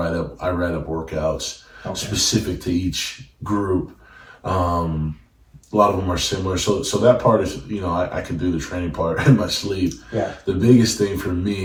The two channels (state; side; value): identical; both; correlation 1.00